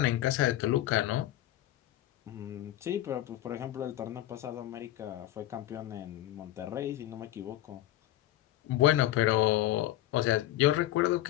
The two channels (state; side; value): quieter; right; 14.3 dB